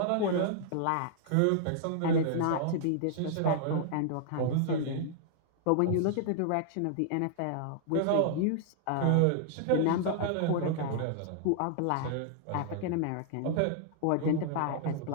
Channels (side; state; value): both; different; correlation -0.01